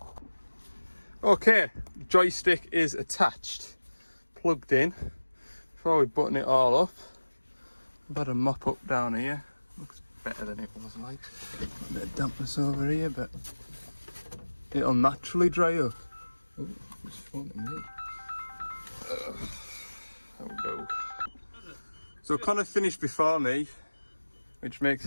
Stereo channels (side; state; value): both; inverted; correlation -1.00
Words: Okay, joystick is attached, plugged in. Before we button it all up, I've had a mop up down here. Looks better than it was like. A bit of dampness over here, but it'll naturally dry up. Oh, it's fun to me. There we go. So Connor finished before me, which makes